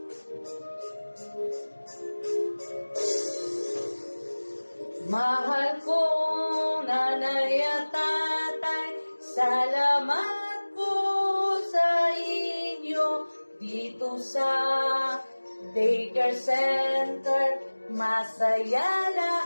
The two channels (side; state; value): both; inverted; correlation -1.00